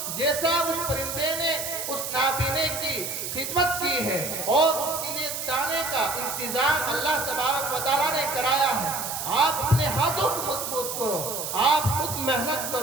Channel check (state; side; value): noise; right; hiss, 4 dB below the sound